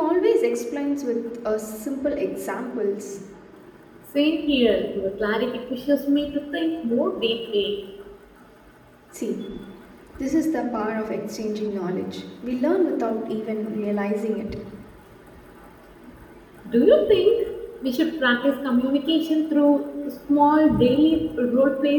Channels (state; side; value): identical; both; correlation 1.00